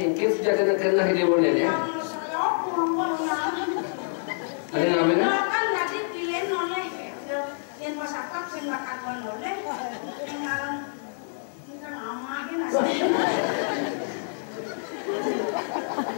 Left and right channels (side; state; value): right; silent; digital silence